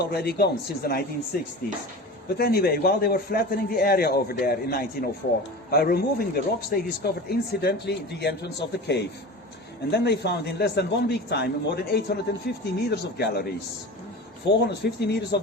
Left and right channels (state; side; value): normal; both; correlation 0.32